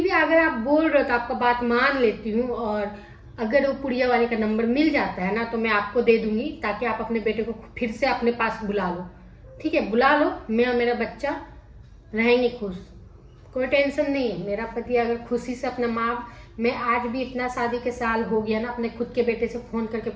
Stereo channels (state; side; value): identical; both; correlation 1.00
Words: भी अगर आप बोल रहे हो तो आपका बात मान लेती हूँ। और अगर वो पुड़िया वाले का नंबर मिल जाता है ना तो मैं आपको दे दूंगी, ताकि आप अपने बेटे को फिर से अपने पास बुला लो, ठीक है। बुला लो, मैं और मेरा बच्चा रहेंगे खुश, कोई टेंशन नहीं है। मेरा पति अगर खुशी से अपना माँ, मैं आज भी इतना शादी के साल हो गया ना, अपने खुद के बेटे से फोन करके